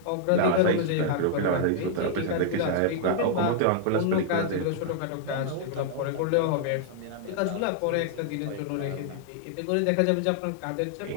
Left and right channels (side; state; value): both; different; correlation -0.01